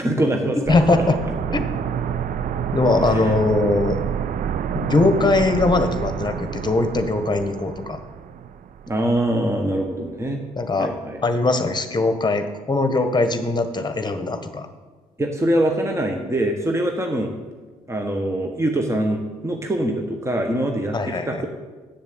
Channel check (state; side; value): normal; both; correlation 0.70